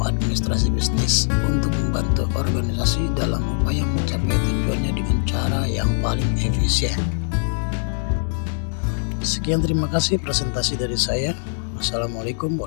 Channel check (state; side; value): silent; right; digital silence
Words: administrasi bisnis untuk membantu organisasi dalam upaya mencapai tujuannya dengan cara yang paling efisien. Sekian, terima kasih presentasi dari saya. Wassalamualaikum